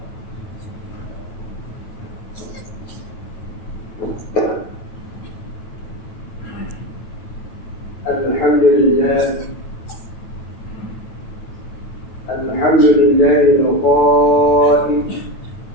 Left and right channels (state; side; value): late; right; 9.1 ms